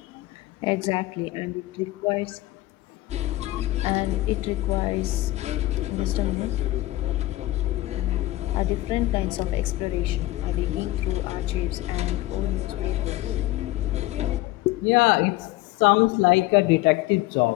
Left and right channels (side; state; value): right; quieter; 17.6 dB